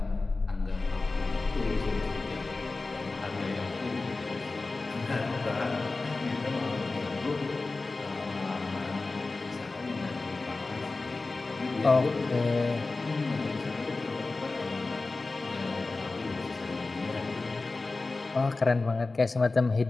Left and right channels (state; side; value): quieter; right; 3.5 dB